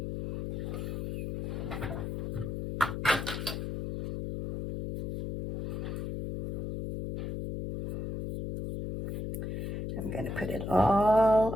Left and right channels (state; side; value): noise; left; hum, 4 dB below the sound